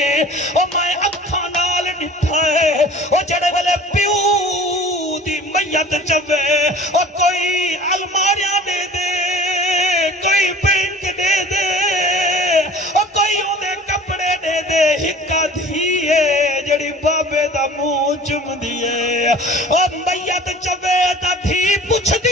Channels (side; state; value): both; normal; correlation 0.45